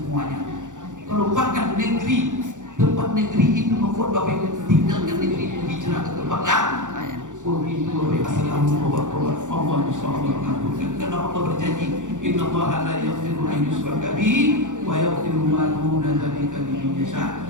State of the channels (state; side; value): late; left; 0.86 ms